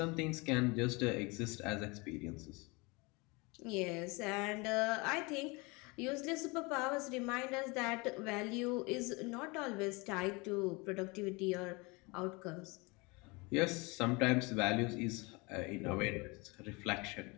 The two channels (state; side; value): quieter; right; 26.9 dB